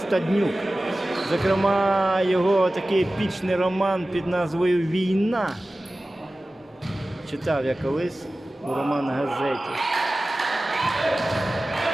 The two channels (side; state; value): both; normal; correlation 0.96